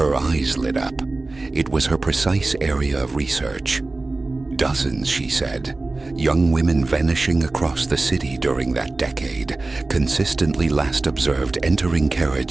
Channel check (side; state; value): left; quieter; 3.3 dB